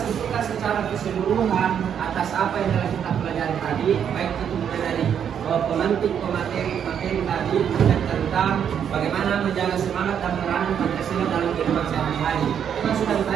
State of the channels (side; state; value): left; quieter; 8.4 dB